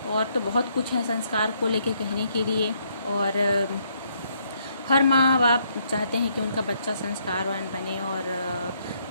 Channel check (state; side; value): inverted; both; correlation -0.71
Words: और तो बहुत कुछ है संस्कार को लेके कहने के लिए, और हर माँ बाप चाहते हैं कि उनका बच्चा संस्कारवान बने और